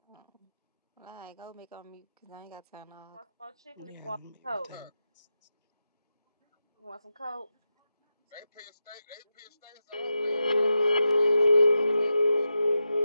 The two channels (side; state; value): both; inverted; correlation -0.89